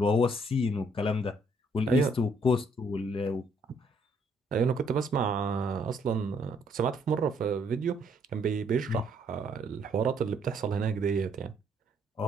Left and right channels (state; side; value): normal; both; correlation 0.68